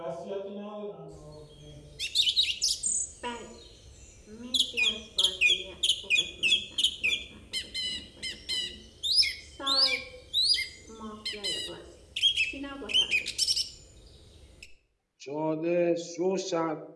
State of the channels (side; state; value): both; identical; correlation 1.00